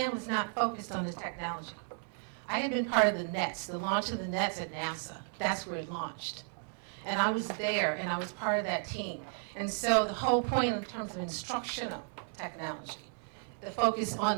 was not focused on the technology. I had been part of the NETs, the launch of the NETs at NASA. That's where it launched. And I was there, and I was part of that team. And so the whole point in terms of instructional technology, the focus on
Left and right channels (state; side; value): silent; left; 55 dB below the other